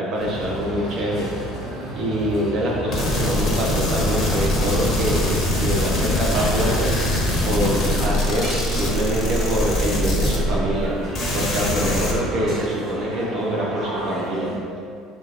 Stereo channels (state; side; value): normal; both; correlation 0.57